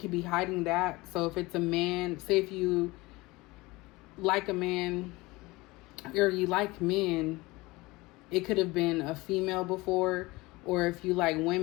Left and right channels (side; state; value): right; quieter; 21.9 dB